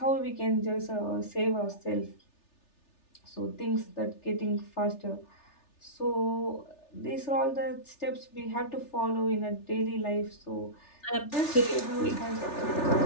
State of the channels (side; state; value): right; late; 3.4 ms